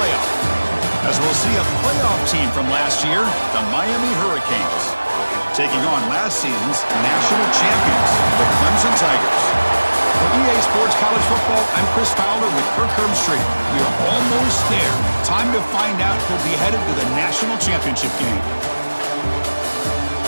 As we'll see a playoff team from last year, the Miami Hurricanes, taking on last season's national champions, the Clemson Tigers. For EA Sports College Football, I'm Chris Fowler with Kirk Herbstreit. We are almost there. Time to find out who'll be headed to the national championship game.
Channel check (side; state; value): both; inverted; correlation -1.00